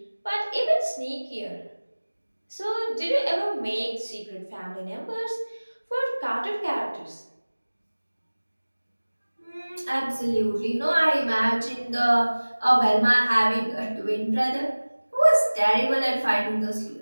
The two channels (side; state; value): both; inverted; correlation -1.00